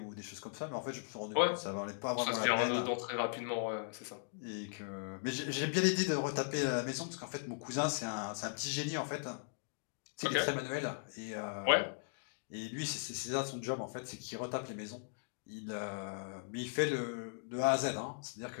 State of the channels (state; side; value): silent; right; digital silence